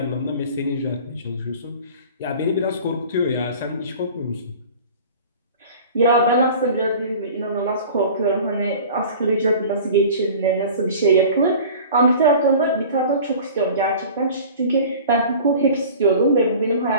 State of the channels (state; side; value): inverted; both; correlation -0.42